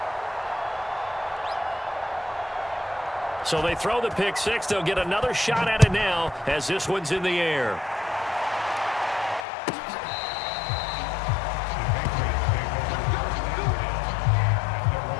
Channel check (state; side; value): drops out; right; at 9.5 s